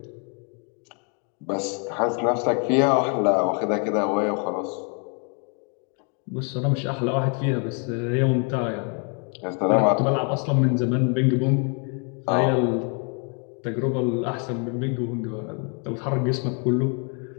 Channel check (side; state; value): right; quieter; 39.1 dB